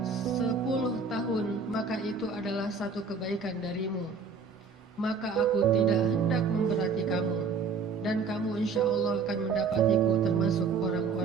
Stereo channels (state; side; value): quieter; left; 5.0 dB